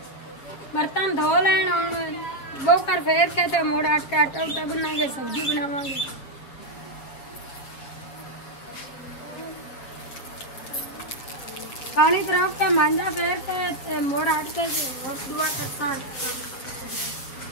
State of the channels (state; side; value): late; right; 7.3 ms